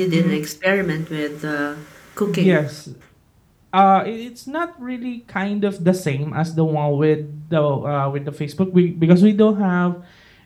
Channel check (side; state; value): both; identical; correlation 1.00